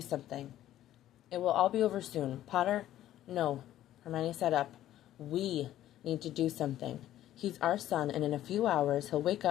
It will all be over soon. Potter? No. Hermione sat up. We need to do something. He's our son, and in a few hours he'll wake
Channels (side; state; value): right; quieter; 12.9 dB